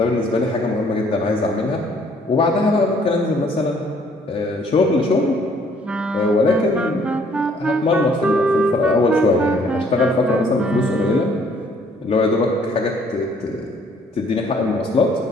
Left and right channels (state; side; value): normal; both; correlation 0.62